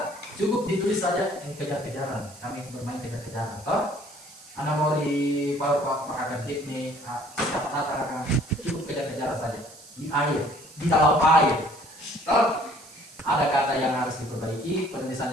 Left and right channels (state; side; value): noise; right; hiss, 21 dB below the sound